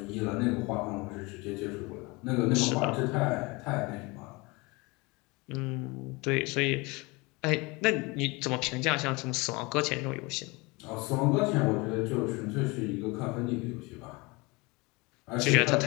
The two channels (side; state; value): right; quieter; 25.5 dB